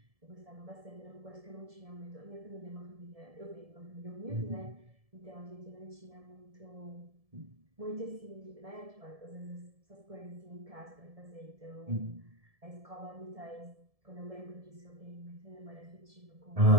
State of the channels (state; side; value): late; left; 1.7 ms